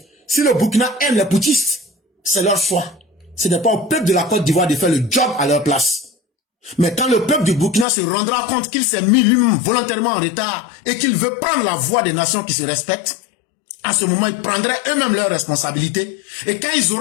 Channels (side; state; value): right; drops out; at 7.9 s